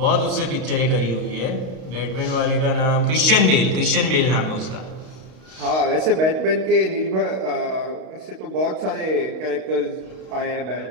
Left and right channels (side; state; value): left; late; 32 ms